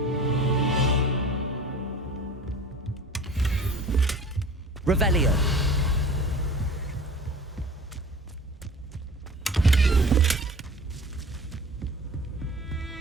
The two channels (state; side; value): normal; both; correlation 0.42